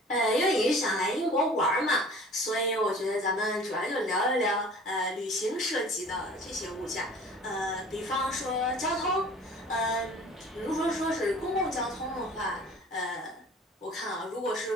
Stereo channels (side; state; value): both; normal; correlation 0.46